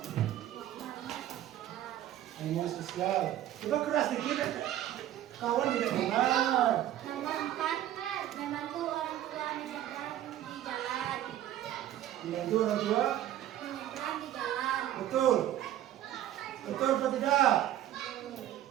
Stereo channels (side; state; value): left; quieter; 12.5 dB